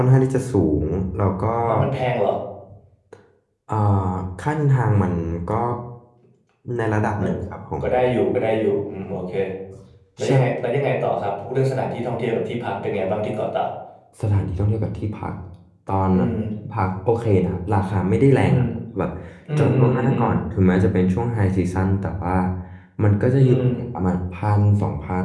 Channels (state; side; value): identical; both; correlation 1.00